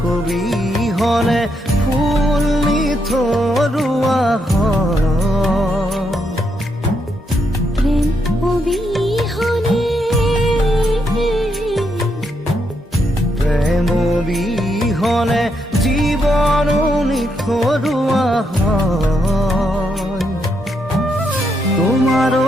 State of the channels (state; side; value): normal; both; correlation 0.79